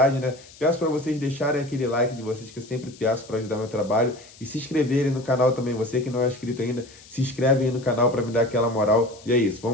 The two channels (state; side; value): noise; left; hiss, 22 dB below the sound